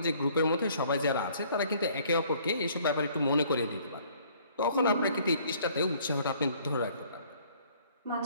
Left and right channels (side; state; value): both; inverted; correlation -0.59